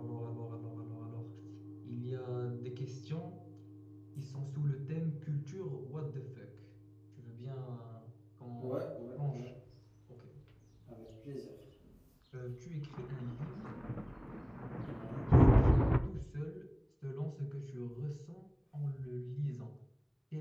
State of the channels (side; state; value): both; identical; correlation 1.00